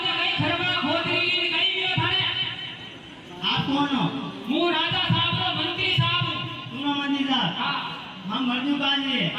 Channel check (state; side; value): identical; both; correlation 1.00